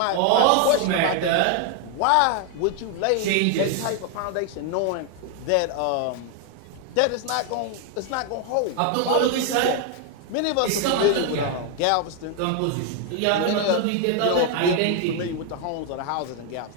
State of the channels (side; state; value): both; different; correlation 0.01